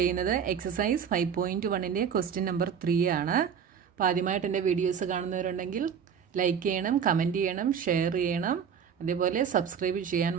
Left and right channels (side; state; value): left; quieter; 7.4 dB